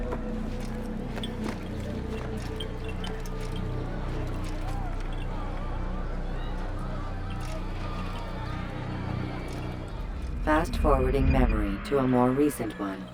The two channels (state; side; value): identical; both; correlation 1.00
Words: Fast-forwarding memory to a more recent one.